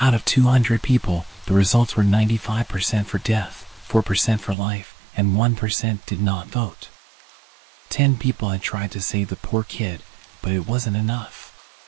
of 200 people, the results were 95% for death, 4% for life, and 1% did not vote. 10 people had tried to save the poor kid, but it wasn't enough.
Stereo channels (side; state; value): left; drops out; at 4.5 s